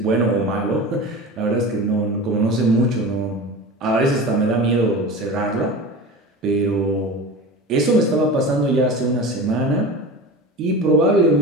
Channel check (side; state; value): both; normal; correlation 0.32